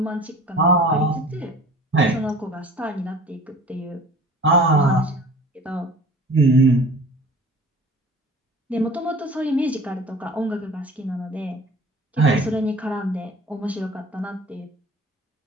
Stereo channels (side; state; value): both; normal; correlation 0.44